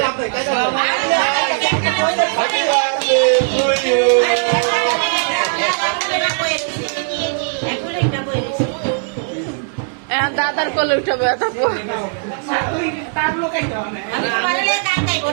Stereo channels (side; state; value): left; silent; 65 dB below the other